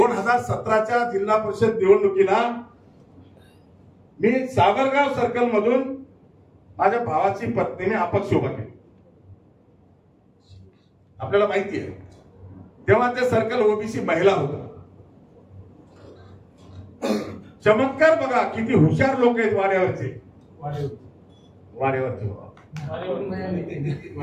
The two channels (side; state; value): both; identical; correlation 1.00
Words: जिल्हा परिषद निवडणुकीला मी सावरगाव सर्कल मधून माझ्या भावाची पत्नीने अपक्ष उभा केली. आपल्याला माहिती आहे तेव्हा ते सर्कल ओबीसी महिला होता. चमत्कार बघा किती हुशार लोक आहेत वाड्यावरचे.